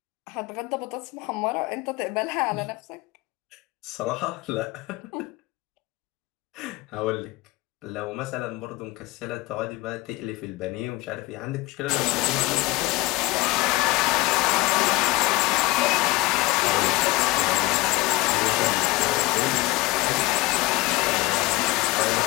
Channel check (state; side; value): quieter; right; 21.2 dB